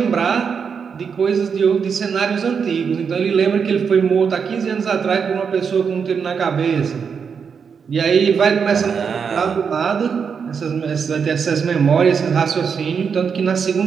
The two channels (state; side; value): quieter; left; 6.3 dB